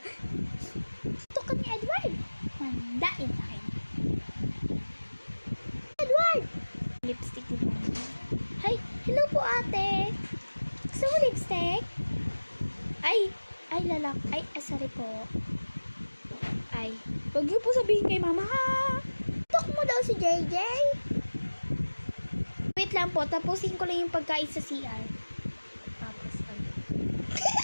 Sinuntok ka ni Edward? Mandain sa akin. Edward! Lipstick ni Mama. Hi, hello po ate. Gusto mo lipstick? Ay, lalak. Ay, sorry po. Ay, huwag niyo po sabihin kay Mama ha. Tok mo daw si JJ. Wait lang po, tapusin ko lang yung pagkain sa CR. Tapos,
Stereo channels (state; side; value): inverted; both; correlation -1.00